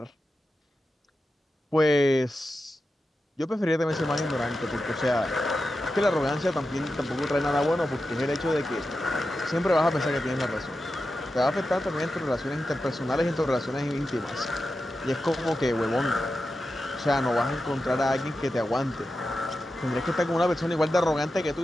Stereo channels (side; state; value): both; normal; correlation 0.91